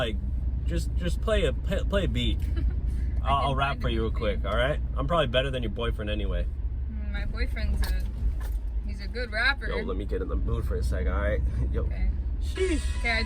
just play a beat. I'll rap for you real quick, all right? I'm probably better than your boyfriend anyway. My boyfriend's he's a good rapper. Yo, let me get in the mood for a second, all right? Yo. Okay. Sheesh. Okay, I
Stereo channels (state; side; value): identical; both; correlation 1.00